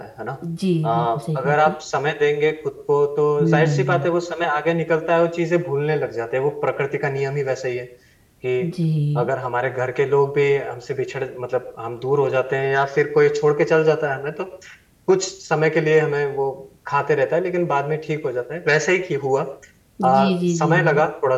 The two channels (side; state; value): both; identical; correlation 1.00